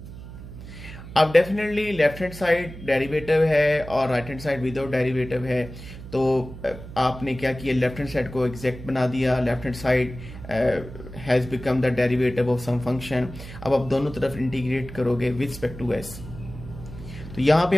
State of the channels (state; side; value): noise; right; hum, 13 dB below the sound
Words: अब definitely left hand side derivative है और right hand side without derivative है, तो आपने क्या किया लेफ्ट हैंड साइड को एग्जैक्ट बना दिया, left hand side has become the derivative of some function. अब आप दोनों तरफ इंटीग्रेट करोगे विद रिस्पेक्ट टू एस, तो यहां पे